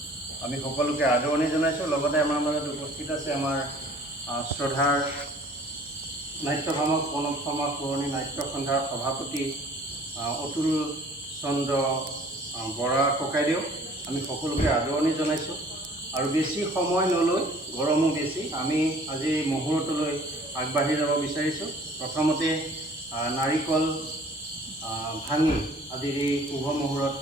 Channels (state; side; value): normal; both; correlation 0.52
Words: আমি সকলোকে আদৰণি জনাইছোঁ। লগতে আমাৰ মাজত উপস্থিত আছে আমাৰ শ্ৰদ্ধাৰ নাট্যভামক প্ৰণৱ শৰ্মা পুৰণি নাট্য সন্ধ্যাৰ সভাপতি অতুল চন্দ্ৰ বৰা ককাইদেউ। আমি সকলোকে আদৰণি জনাইছোঁ। আৰু বেছি সময় নলৈ, গৰমো বেছি, আমি আজি মুহূৰ্তলৈ আগবাঢ়ি যাব বিচাৰিছোঁ। প্ৰথমতে নাৰিকল ভাঙি আজিৰ এই শুভ মুহূৰ্ত